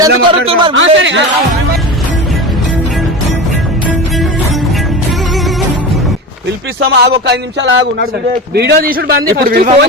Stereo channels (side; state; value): both; normal; correlation 0.27